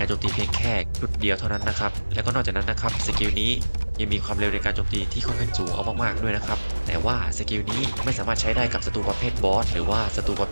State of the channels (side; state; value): both; inverted; correlation -1.00